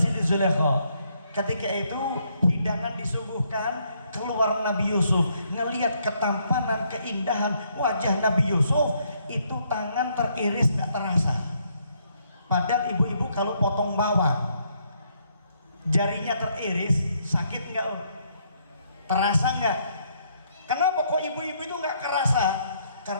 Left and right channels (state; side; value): inverted; both; correlation -0.72